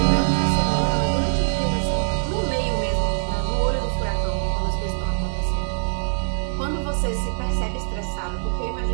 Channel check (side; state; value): left; silent; digital silence